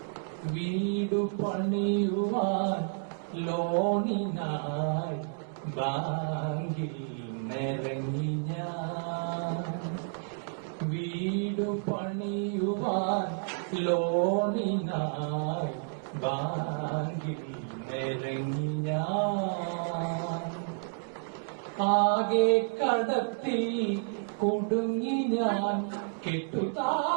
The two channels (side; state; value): left; silent; digital silence